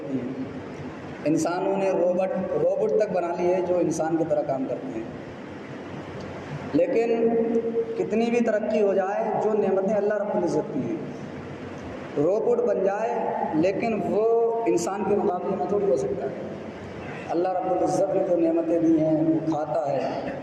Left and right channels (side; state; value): both; identical; correlation 1.00